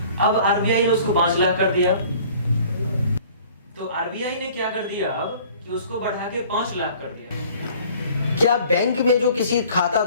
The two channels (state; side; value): inverted; both; correlation -0.50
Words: अब आरबीआई ने उसको 5 लाख कर दिया, तो आरबीआई ने क्या कर दिया अब कि उसको बढ़ा के 5 लाख कर दिया। क्या बैंक में जो किसी खाता